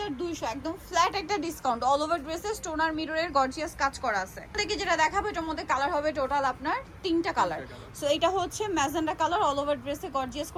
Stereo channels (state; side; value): identical; both; correlation 1.00